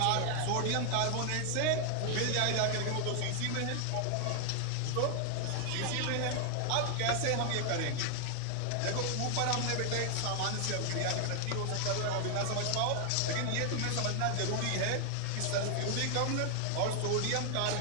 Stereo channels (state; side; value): different; both; correlation 0.00